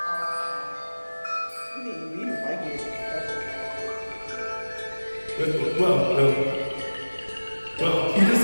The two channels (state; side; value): inverted; both; correlation -1.00